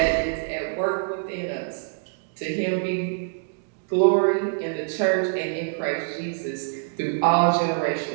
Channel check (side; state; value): left; silent; digital silence